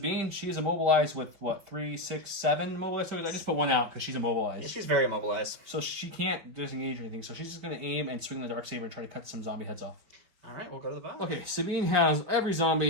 she is immobilized with, what, 3, 6, 7 immobilized tokens? I just put 1 out because she's immobilized. She's very immobilized. So she can't disengage or anything. So she's just going to aim and swing the Darksaber and try to cut some zombie heads off. All right, we'll go to the bottom. Okay, Sabine has every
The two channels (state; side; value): late; left; 5.5 ms